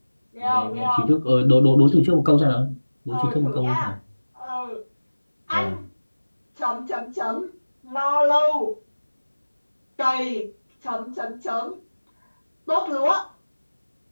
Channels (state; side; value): inverted; both; correlation -1.00